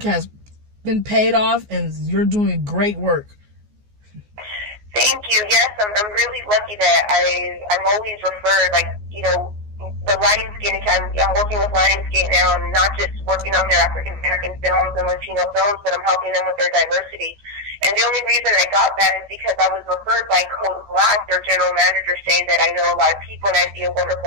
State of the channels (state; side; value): late; left; 14 ms